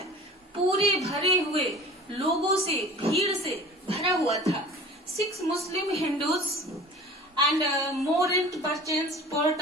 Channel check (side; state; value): both; normal; correlation 0.41